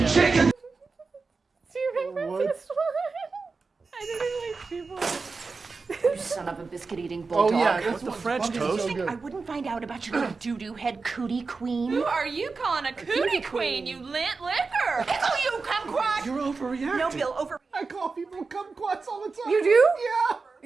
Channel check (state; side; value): quieter; left; 4.3 dB